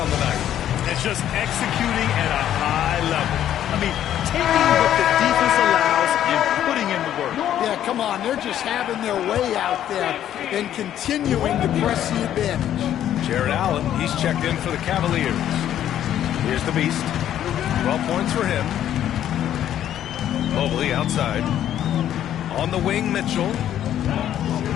the night. And just executing at a high level. I mean, taking what the defense allows and putting in the work. Yeah, come on. They're just having their way out there and continuing to press the advantage. Jared Allen, he's checked in for the Cavaliers. Here's the Beast. 12 points for him. Mobley outside. On the wing, Mitchell.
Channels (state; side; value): quieter; right; 11.1 dB